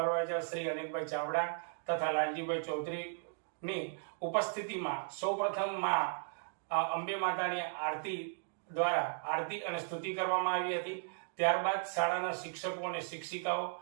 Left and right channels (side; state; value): left; silent; digital silence